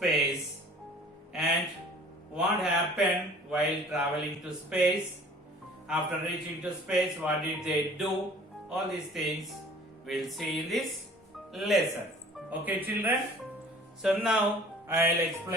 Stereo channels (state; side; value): normal; both; correlation 0.49